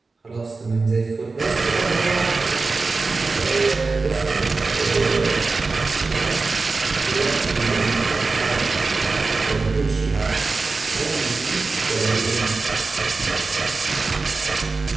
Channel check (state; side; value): quieter; left; 3.9 dB